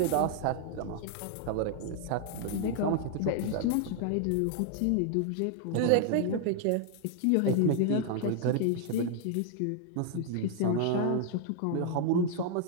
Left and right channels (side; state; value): both; different; correlation 0.00